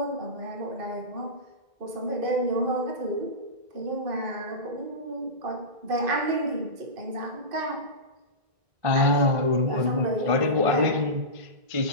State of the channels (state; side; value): late; left; 1.5 ms